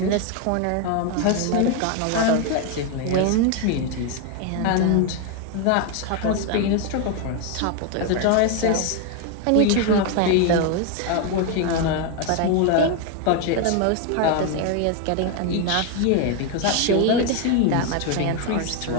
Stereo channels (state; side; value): different; both; correlation 0.01